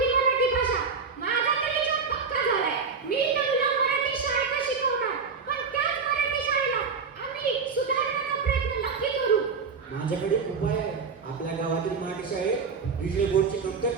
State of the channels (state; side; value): quieter; left; 5.3 dB